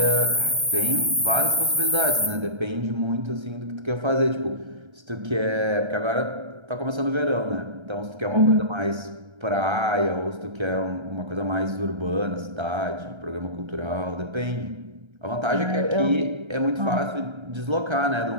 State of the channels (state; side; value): late; left; 1.3 ms